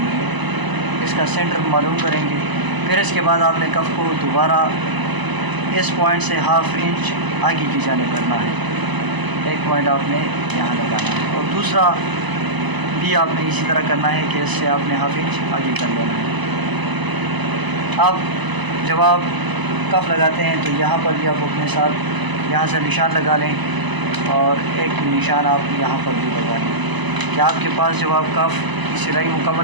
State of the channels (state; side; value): late; left; 1.0 ms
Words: है, इसका सेंटर मालूम करेंगे। फिर इसके बाद आपने कफ़ को दोबारा इस पॉइंट से हाफ़ इंच आगे की जानिब करना है। एक पॉइंट आपने यहाँ लगाना है और दूसरा भी आपने इसी तरह करना है कि इससे आपने हाफ़ इंच आगे कर लेना है। अब जब आप कफ़ लगाते हैं तो यहाँ पर भी आप अपने साथ यहाँ से निशान लगा लें और एक निशान आप यहाँ पर भी लगा लें कि आपके पास जब आप कफ़ की सिलाई